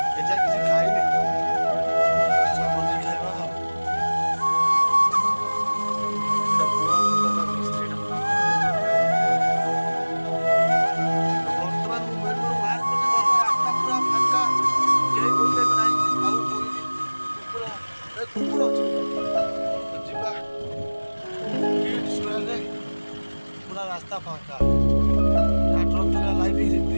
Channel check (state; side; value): inverted; both; correlation -1.00